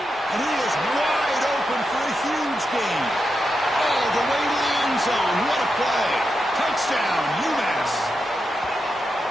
And he is wide open for a huge gain. All the way to the end zone. What a play. Touchdown, UMass.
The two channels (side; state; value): both; normal; correlation 0.87